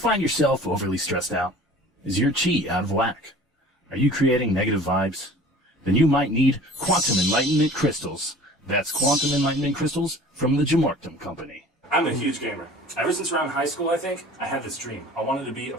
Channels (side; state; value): both; normal; correlation 0.46